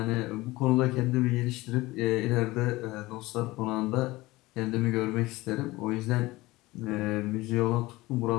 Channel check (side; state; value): right; quieter; 19.9 dB